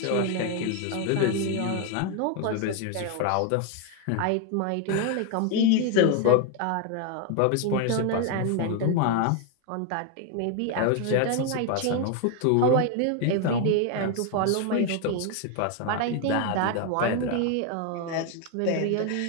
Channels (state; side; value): different; both; correlation 0.01